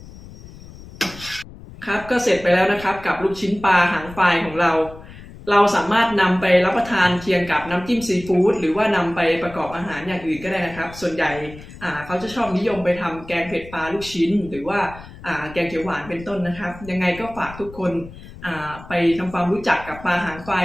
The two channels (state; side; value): noise; left; rumble, 17 dB below the sound